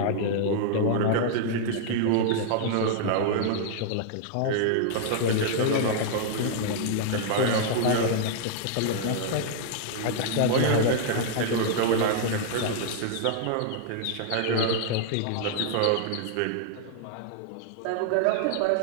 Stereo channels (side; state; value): both; different; correlation -0.01